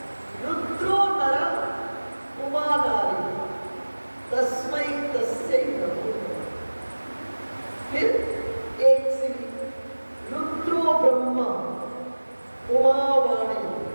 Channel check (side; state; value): both; inverted; correlation -1.00